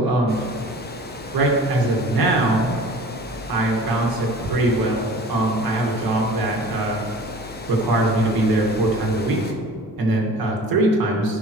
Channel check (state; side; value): normal; both; correlation 0.44